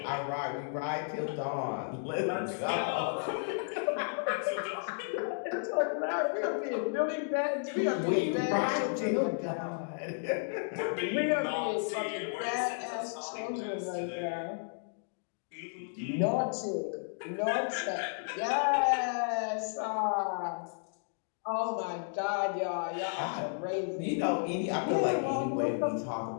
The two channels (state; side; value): silent; right; digital silence